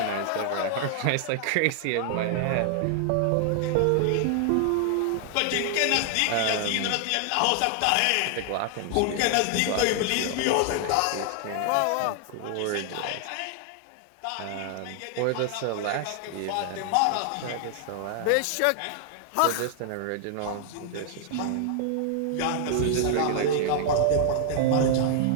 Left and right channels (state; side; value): different; both; correlation 0.00